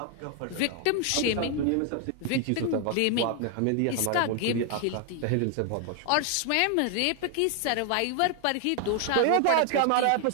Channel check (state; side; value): different; both; correlation 0.00